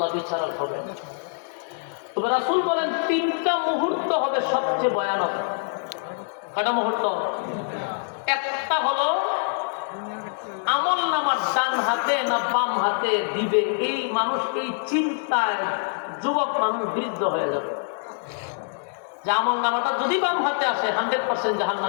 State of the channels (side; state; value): right; silent; 62 dB below the other